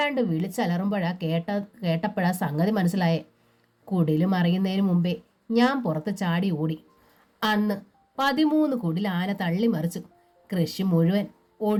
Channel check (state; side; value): identical; both; correlation 1.00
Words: വിളിച്ചലറുമ്പോഴാ കേട്ടപ്പോഴാ സംഗതി മനസ്സിലായേ. കുടില് മറിയുന്നതിന് മുമ്പേ ഞാൻ പുറത്ത് ചാടി ഓടി. അന്ന് 13 കുടിൽ ആന തള്ളി മറിച്ചു. കൃഷി മുഴുവൻ